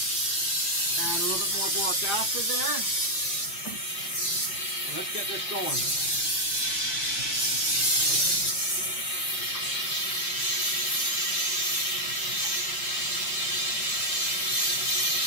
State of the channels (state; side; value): late; right; 5.7 ms